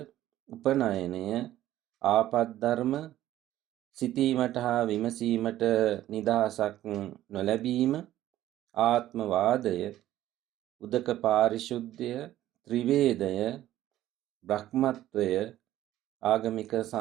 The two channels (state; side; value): quieter; left; 13.7 dB